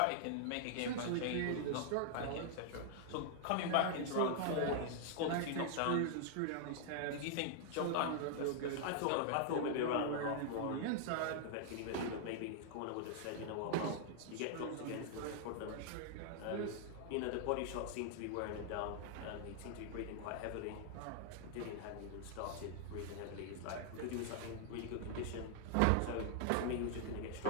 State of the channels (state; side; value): different; both; correlation -0.01